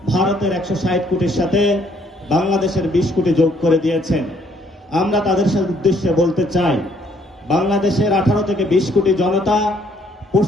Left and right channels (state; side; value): normal; both; correlation 0.66